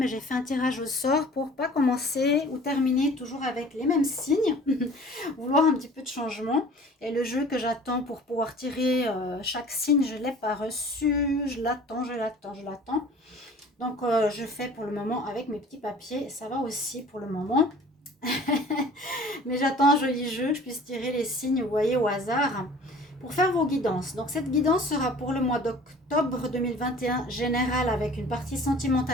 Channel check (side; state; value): both; normal; correlation 0.47